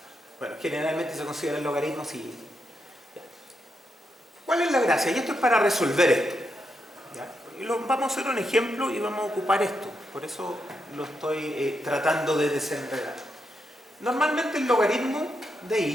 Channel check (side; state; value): both; normal; correlation 0.83